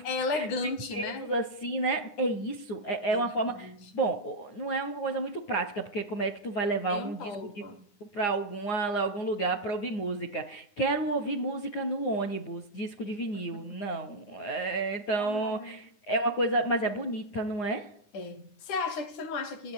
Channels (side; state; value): right; late; 9.7 ms